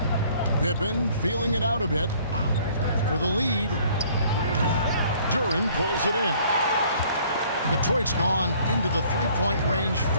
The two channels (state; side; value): inverted; both; correlation -0.57